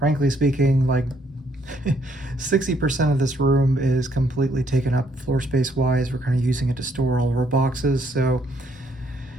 speaking, like 60% of this room is completely taken up floor space wise. We're kind of using it to store all of our boxes, so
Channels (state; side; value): normal; both; correlation 0.69